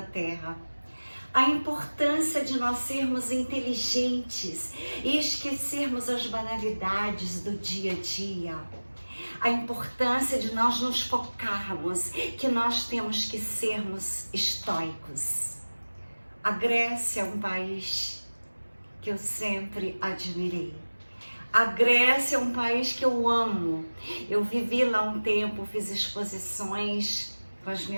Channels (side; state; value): both; inverted; correlation -1.00